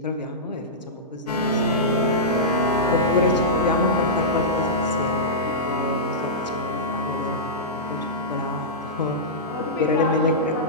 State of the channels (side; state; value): both; normal; correlation -0.14